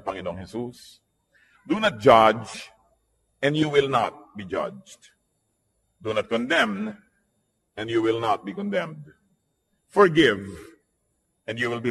Panginoong Hesus. Do not judge, and you will not be judged. Do not condemn, and you will not be condemned. Forgive, and you will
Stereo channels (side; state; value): both; identical; correlation 1.00